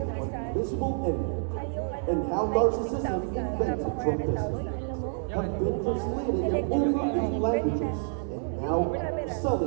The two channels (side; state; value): left; silent; digital silence